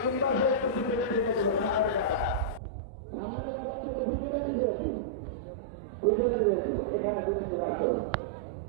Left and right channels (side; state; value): left; drops out; at 2.6 s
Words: পাশে একটু পিছনে রেখে দেবো, সামনের কাতার, সামনের কাতার একটু পিছনে রেখে দেবো, পিছনে রেখে দেবো, এখানে পিছনে রাখো।